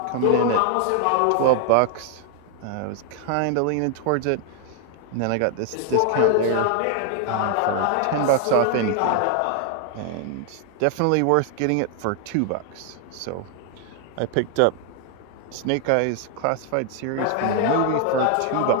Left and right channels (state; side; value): different; both; correlation 0.00